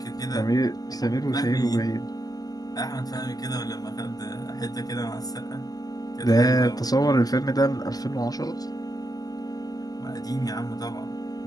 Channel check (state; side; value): late; right; 0.18 ms